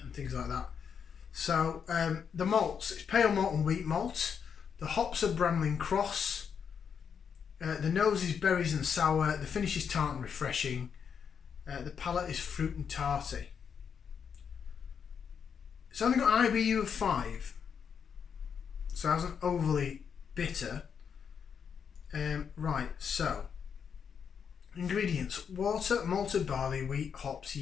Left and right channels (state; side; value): quieter; right; 7.0 dB